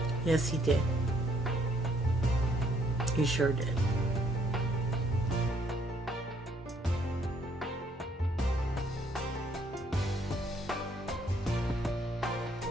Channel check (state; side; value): normal; both; correlation 0.67